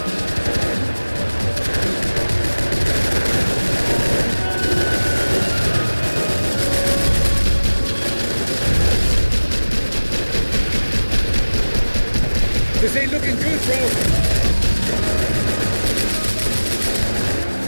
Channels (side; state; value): both; inverted; correlation -1.00